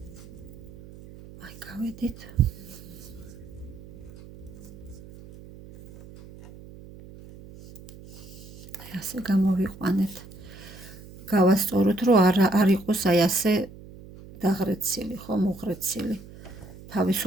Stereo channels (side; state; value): right; noise; hum, 17 dB below the sound